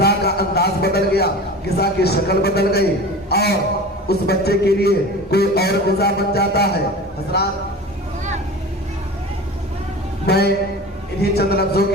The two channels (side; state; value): both; normal; correlation 0.35